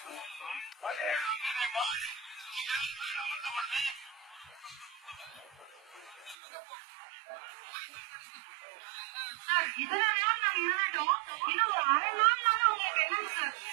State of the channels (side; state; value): left; drops out; at 6.4 s